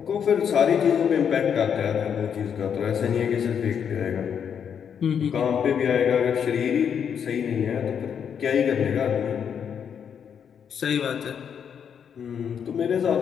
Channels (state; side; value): quieter; right; 7.7 dB